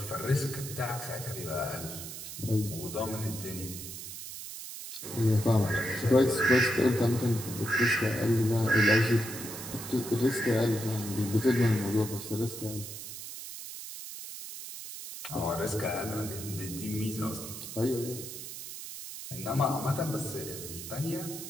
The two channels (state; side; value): noise; right; hiss, 10 dB below the sound